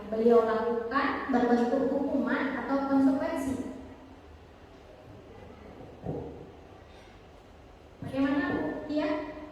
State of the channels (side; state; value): both; identical; correlation 1.00